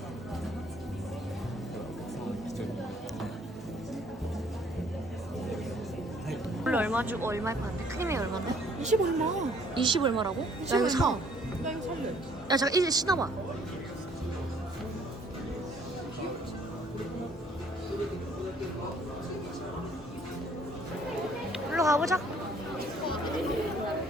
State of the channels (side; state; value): both; normal; correlation 0.61